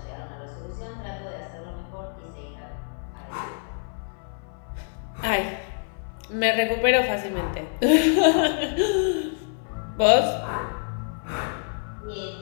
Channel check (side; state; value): right; silent; 59 dB below the other